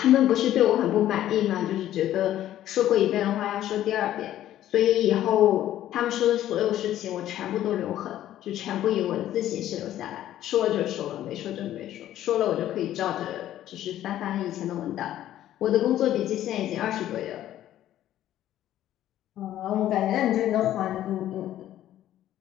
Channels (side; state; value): right; quieter; 12.6 dB